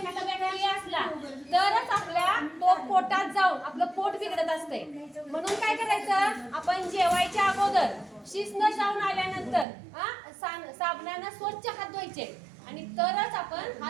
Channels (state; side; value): drops out; left; at 9.7 s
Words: बॅक्टेरिया असला तरच आपल्या तो पोटात जाऊन आपलं पोट बिघडत असते. म्हणून काय करायचं, आपण जेवायच्या अगोदर शिस्न जाऊन आल्यानंतर साबणानं स्वच्छ हात धुवायचे आणि तरच आपण